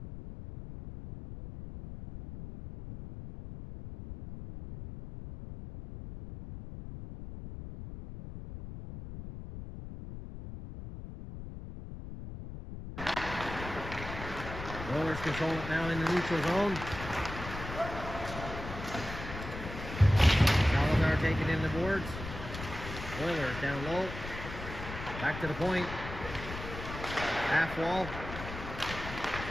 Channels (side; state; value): left; noise; rumble, 9 dB below the sound